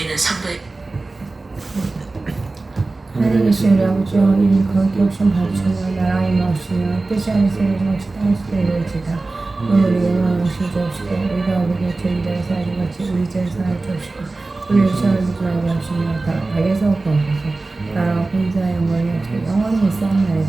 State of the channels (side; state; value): left; quieter; 3.4 dB